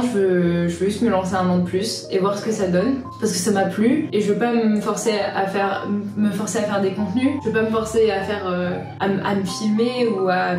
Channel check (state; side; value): identical; both; correlation 1.00